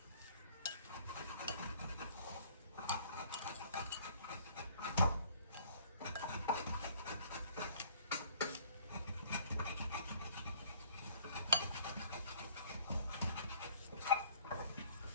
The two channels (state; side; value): inverted; both; correlation -0.56